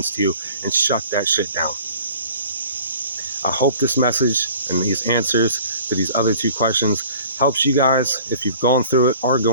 to you and shut that shit down. I hope this message and these answers to these other two questions helps you guys if you've gone through it, are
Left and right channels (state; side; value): inverted; both; correlation -0.48